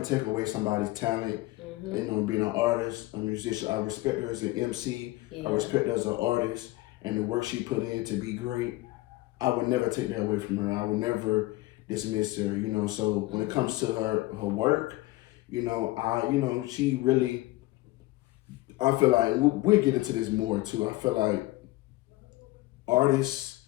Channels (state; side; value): quieter; right; 19.2 dB